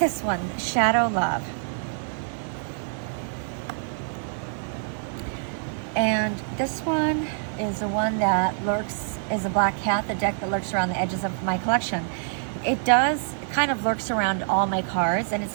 one, Shadow Love. And this one is the one that is a Black Cat, the deck that lurks around the edges of my collection. It does kind of lurks around all my cards, and it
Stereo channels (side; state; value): left; silent; 61 dB below the other